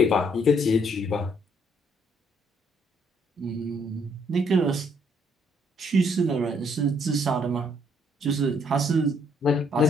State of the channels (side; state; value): both; normal; correlation 0.68